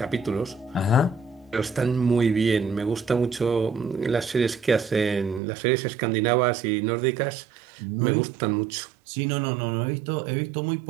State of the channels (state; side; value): drops out; left; at 5.4 s